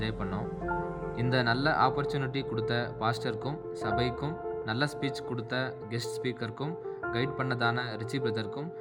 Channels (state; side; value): identical; both; correlation 1.00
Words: பண்ணோம். இந்த நல்ல ஆப்பர்ச்சுனிட்டி கொடுத்த பாஸ்டருக்கும், சபைக்கும், நல்ல ஸ்பீச் கொடுத்த கெஸ்ட் ஸ்பீக்கருக்கும், கைட் பண்ணதான ரிச்சி பிரதருக்கும்